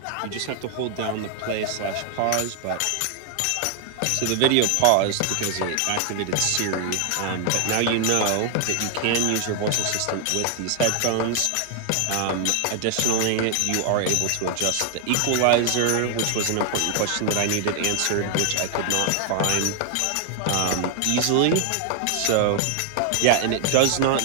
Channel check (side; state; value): both; different; correlation 0.00